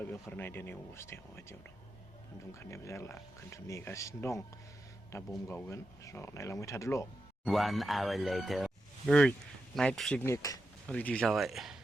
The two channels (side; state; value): both; normal; correlation 0.88